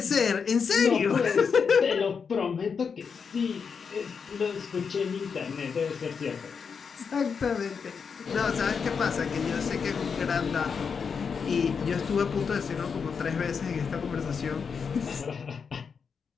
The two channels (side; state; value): right; quieter; 6.0 dB